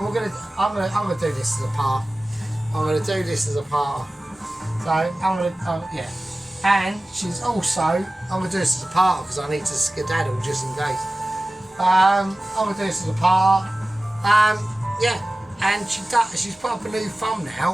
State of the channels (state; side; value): normal; both; correlation 0.96